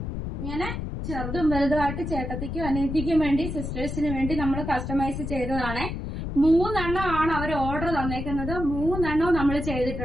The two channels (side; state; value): left; noise; rumble, 5 dB below the sound